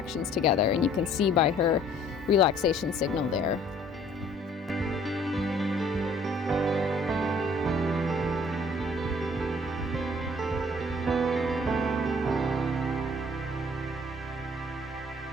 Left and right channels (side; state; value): both; normal; correlation 0.56